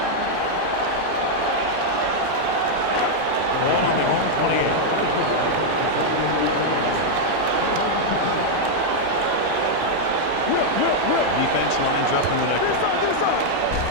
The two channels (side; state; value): both; different; correlation -0.01